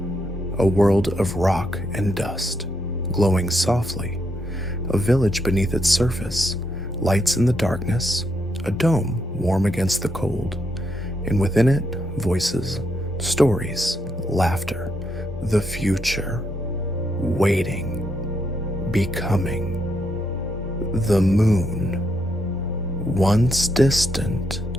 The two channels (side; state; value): both; normal; correlation 0.78